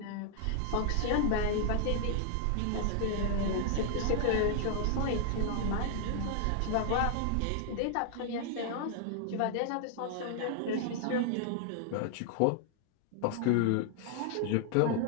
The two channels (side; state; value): both; different; correlation 0.00